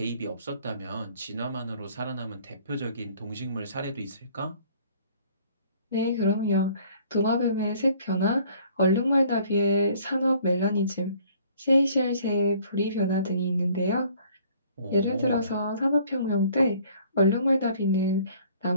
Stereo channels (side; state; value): both; inverted; correlation -0.57